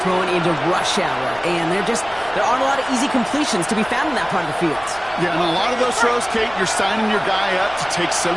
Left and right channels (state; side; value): noise; left; rumble, 21 dB below the sound